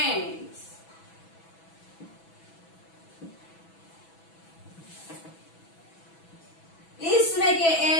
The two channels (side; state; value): right; late; 6.1 ms